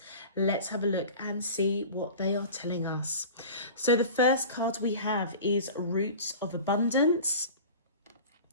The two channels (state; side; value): inverted; both; correlation -0.37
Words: Let's have a look and see what they are telling us. So the first card we have is Roots of Abundance.